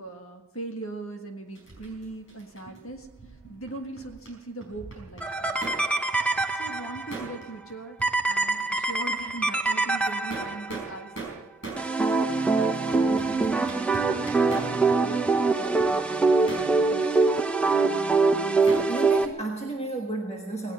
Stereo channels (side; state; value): left; quieter; 3.1 dB